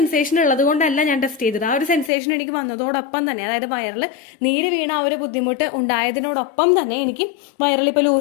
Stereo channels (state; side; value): drops out; right; at 2.1 s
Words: ഉള്ളത് കൊണ്ടല്ല ഞാൻ ടെസ്റ്റ് ചെയ്തത്. ആ ഒരു സെൻസേഷൻ എനിക്ക് വന്നതോടൊപ്പം തന്നെ, അതായത് വയറിൽ നീര് വീണ ആ ഒരു ബുദ്ധിമുട്ട് ഉണ്ടായതിനോടൊപ്പം തന്നെ എനിക്ക് വയറിൽ ഇപ്പൊ